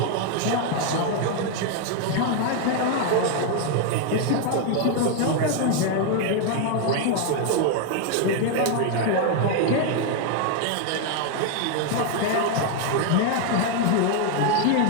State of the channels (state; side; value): different; both; correlation 0.01